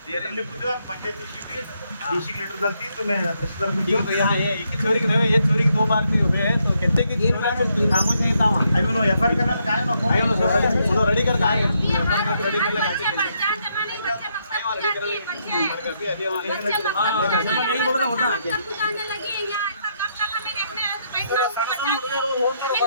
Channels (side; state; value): both; inverted; correlation -0.76